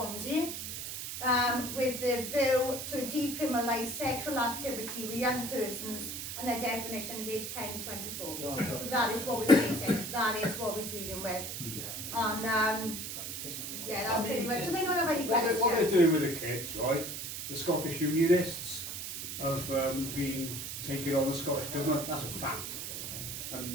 with the view to decriminalise sexual activity with young persons, and their definition is age 10 to 24. So that is what we're facing, that is what we're dealing with. And yeah, that's pretty much. Does anyone have any questions? What they're doing with the kids, right? The Scottish Unionists have been taking on the Scottish Government, that's a fact.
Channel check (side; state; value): right; noise; hiss, 6 dB below the sound